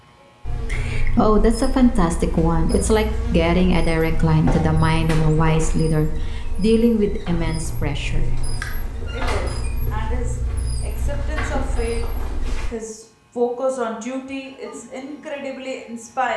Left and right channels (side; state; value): both; identical; correlation 1.00